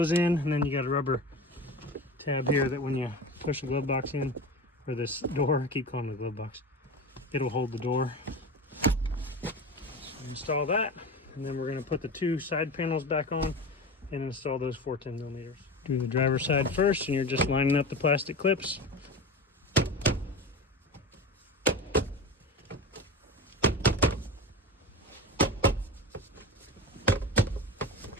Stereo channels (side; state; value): both; normal; correlation 0.28